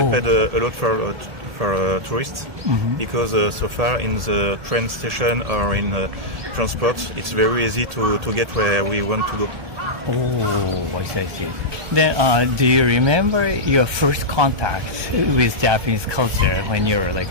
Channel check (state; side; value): late; left; 1.7 ms